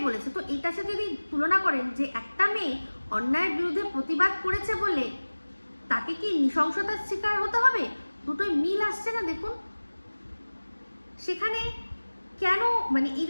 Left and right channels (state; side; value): inverted; both; correlation -1.00